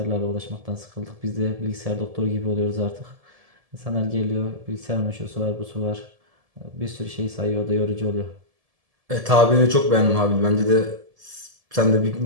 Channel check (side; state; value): left; late; 1.7 ms